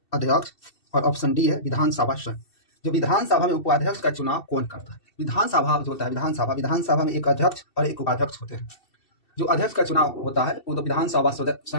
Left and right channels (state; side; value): late; right; 2.7 ms